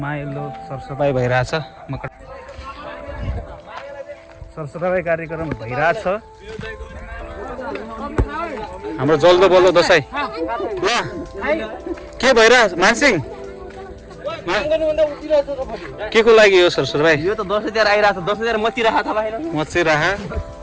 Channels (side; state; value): both; identical; correlation 1.00